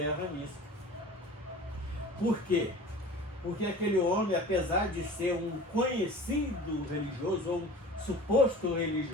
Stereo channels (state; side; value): normal; both; correlation 0.40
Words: nisso. Por quê? Porque aquele homem, apesar de ser um conhecido religioso, ou um suposto